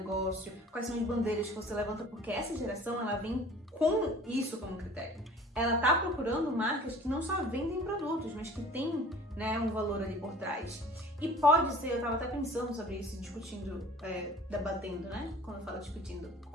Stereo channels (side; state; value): both; normal; correlation 0.46